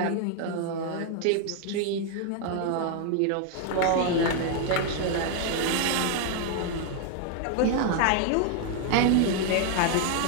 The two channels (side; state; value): both; different; correlation 0.00